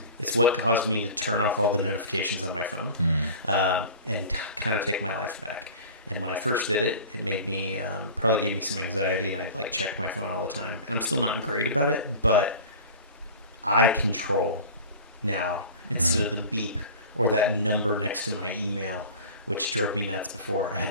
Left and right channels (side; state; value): both; inverted; correlation -0.38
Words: what caused me to turn off all the notifications on my phone, and kind of take my life back. And when I first did it, it made me, probably gave me some anxiety, and I'd like check my phone all the time. And I'm still not great about it, but I control now instead of the beep or that number next to my email, which drove me nuts before. I had